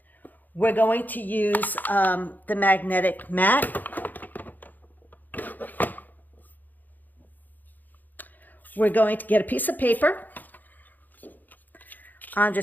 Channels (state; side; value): late; right; 0.085 ms